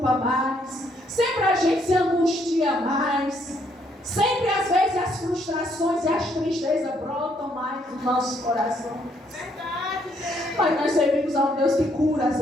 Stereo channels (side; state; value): both; normal; correlation 0.70